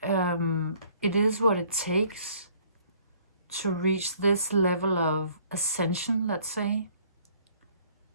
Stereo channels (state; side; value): inverted; both; correlation -0.60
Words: it is what it takes to reach this level of ascension, let's say.